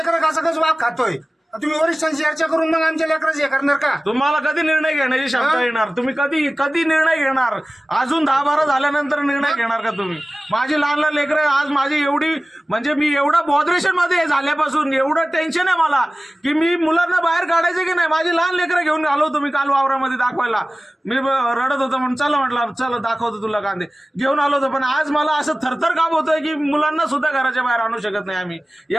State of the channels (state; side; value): normal; both; correlation 0.97